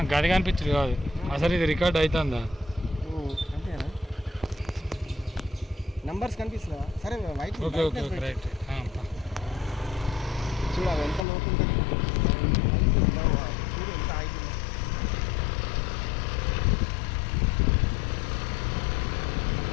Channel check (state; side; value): drops out; right; at 11.2 s